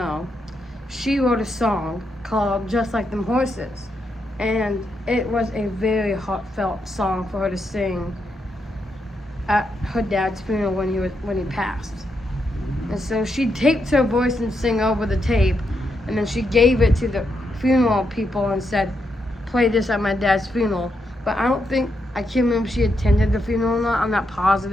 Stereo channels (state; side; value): normal; both; correlation 0.81